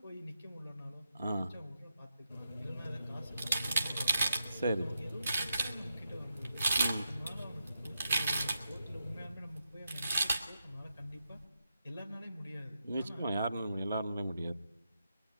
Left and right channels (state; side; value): inverted; both; correlation -0.86